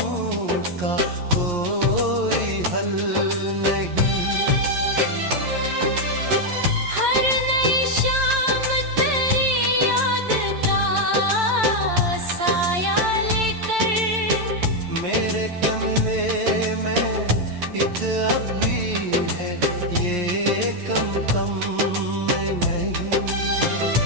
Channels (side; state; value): left; late; 11 ms